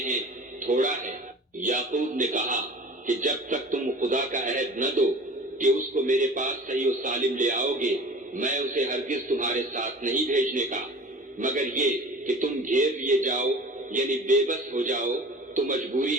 تھوڑا ہے۔ یعقوب نے کہا کہ جب تک تم خدا کا عہد نہ دو کہ اس کو میرے پاس صحیح و سالم لے آؤ گے، میں اسے ہرگز تمہارے ساتھ نہیں بھیجنے کا، مگر یہ کہ تم گھیر لیے جاؤ یعنی بے بس ہو جاؤ تو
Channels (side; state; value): both; normal; correlation 0.41